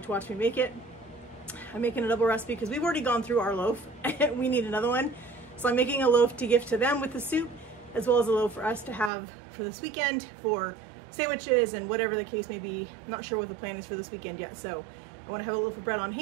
to watch me make it. I'm making a double recipe because we've already gone through our loaf and we need another one. So I'm making a loaf to gift to them with the soup, as well as a loaf for us to have for this weekend for sandwiches and whatever the case may be. I'm not sure what the plan is for this weekend yet, so I want to have a loaf of bread on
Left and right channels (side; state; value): left; drops out; at 9.1 s